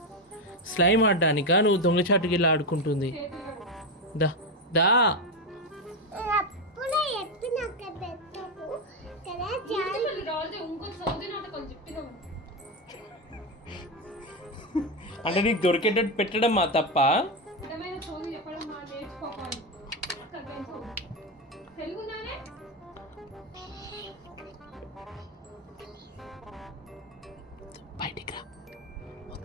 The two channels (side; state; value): both; normal; correlation 0.10